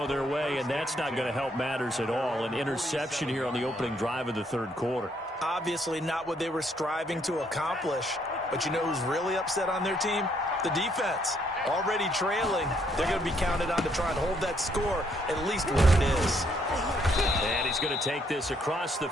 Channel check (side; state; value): both; normal; correlation 0.70